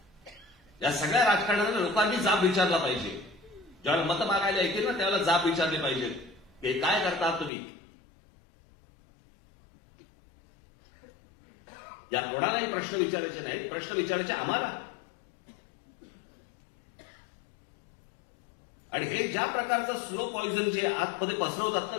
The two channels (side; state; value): right; drops out; at 7.5 s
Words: या सगळ्या राजकारणाला लोकांनी जाब विचारला पाहिजे. ज्यावेळेला मतं मागायला येतील ना, त्यावेळेला जाब विचारले पाहिजेत. हे काय करता तुम्ही? या कोणालाही प्रश्न विचारायचे नाही, प्रश्न विचारायचे आम्हाला. आणि हे ज्या प्रकारचं स्लो पॉइझन जे आतमध्ये पसरवतात ना